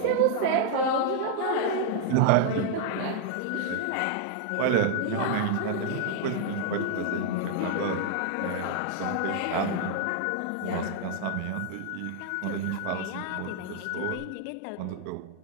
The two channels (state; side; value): different; both; correlation 0.00